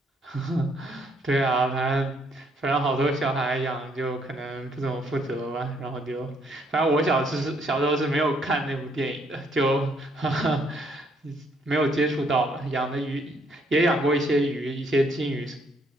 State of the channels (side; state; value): both; normal; correlation 0.69